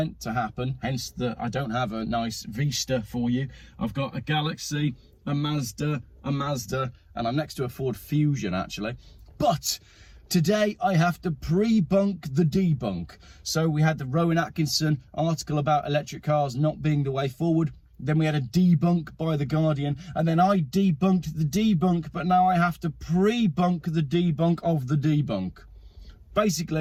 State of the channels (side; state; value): both; identical; correlation 1.00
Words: to happen, hence that I don't have a nice Vista for you. I've got a Galaxy, a Mazda, and I'm next to a Ford Fusion, actually. But today I have to pre-bunk the debunk. So we had the Rowan Atkinson article about electric cars not being the way forward. Then we had a debunk by The Guardian, and then I debunked the debunk, but now I have to pre-bunk the debunk of the debunk.